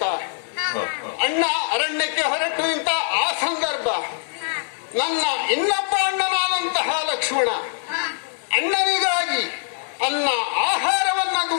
ಆ ಸಂದರ್ಭ ನನ್ನ ಇನ್ನೊಬ್ಬ ಅಣ್ಣನಾದಂತಹ ಲಕ್ಷ್ಮಣ ಅಣ್ಣನಿಗಾಗಿ ಆಹಾರವನ್ನ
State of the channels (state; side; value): silent; right; digital silence